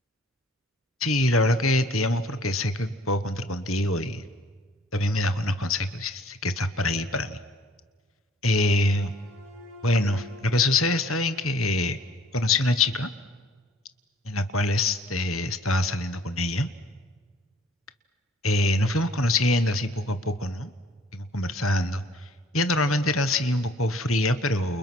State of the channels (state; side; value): normal; both; correlation 0.56